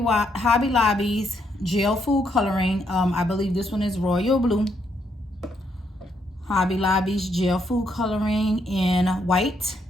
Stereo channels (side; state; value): both; normal; correlation 0.75